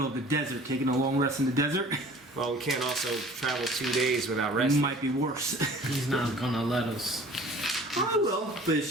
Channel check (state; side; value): normal; both; correlation 0.48